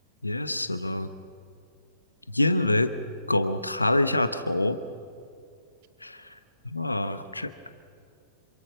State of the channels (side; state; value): both; inverted; correlation -0.87